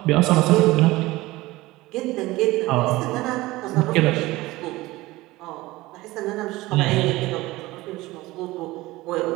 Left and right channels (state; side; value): quieter; left; 19.2 dB